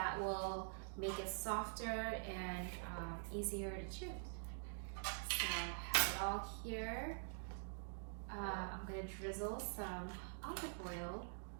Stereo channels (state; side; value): silent; left; digital silence